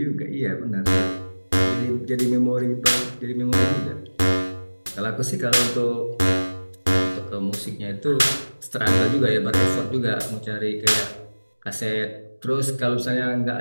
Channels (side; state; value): both; inverted; correlation -1.00